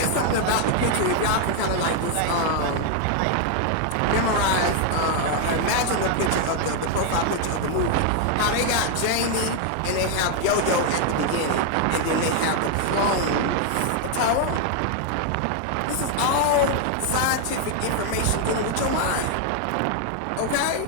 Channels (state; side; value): different; both; correlation 0.01